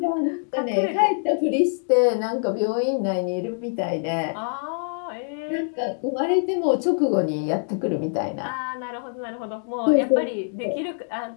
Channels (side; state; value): right; silent; 62 dB below the other